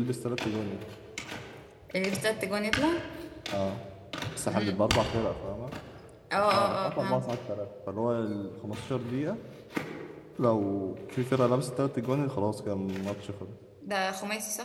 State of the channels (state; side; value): identical; both; correlation 1.00